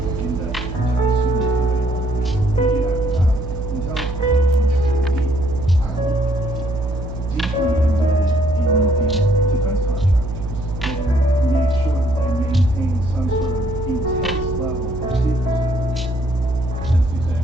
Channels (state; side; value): noise; right; hum, 7 dB below the sound